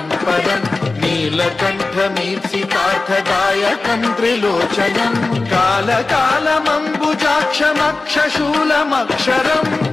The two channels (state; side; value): quieter; right; 3.5 dB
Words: परं नीलकण्ठमीप्सितार्थदायकं त्रिलोचनं कालकालमम्बुजाक्षमक्षशूलमक्षरं